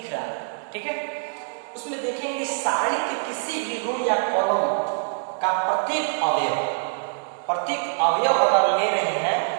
रहा है। ठीक है, उसमें देखेंगे सारणी के किसी भी रो या कॉलम का प्रत्येक अवयव अगर ले रहे हैं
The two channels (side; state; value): left; silent; digital silence